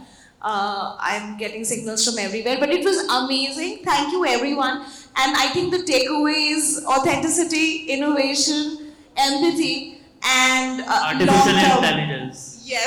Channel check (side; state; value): both; identical; correlation 1.00